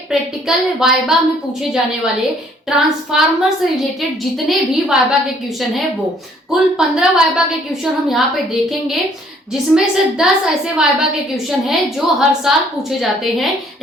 प्रैक्टिकल वाइबा में पूछे जाने वाले ट्रांसफार्मर से रिलेटेड जितने भी वाइबा के क्वेश्चन है वो कुल 15 वाइबा के क्वेश्चन हम यहाँ पे देखेंगे, जिसमें से 10 ऐसे वाइबा के क्वेश्चन हैं जो हर साल पूछे जाते हैं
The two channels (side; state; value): both; normal; correlation 0.61